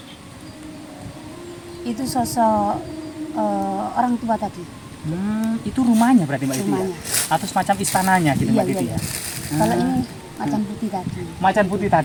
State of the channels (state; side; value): identical; both; correlation 1.00